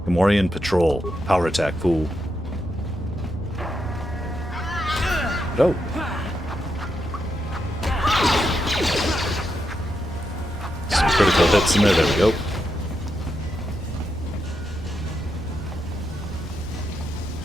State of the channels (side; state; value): both; normal; correlation 0.83